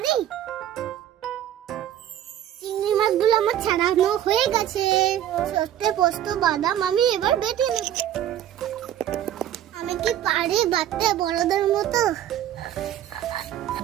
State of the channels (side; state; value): left; quieter; 11.3 dB